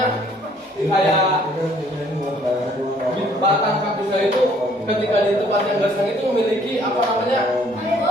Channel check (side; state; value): both; normal; correlation 0.61